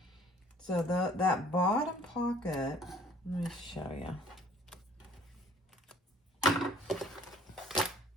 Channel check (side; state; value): both; normal; correlation 0.55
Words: So that bottom pocket, let me show you.